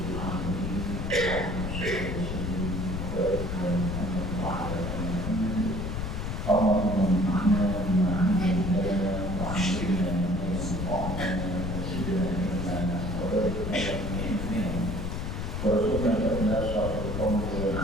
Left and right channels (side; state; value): left; noise; rumble, 3 dB below the sound